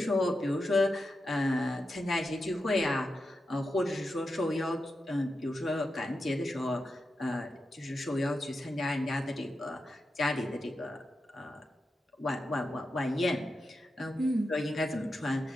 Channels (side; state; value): both; normal; correlation 0.89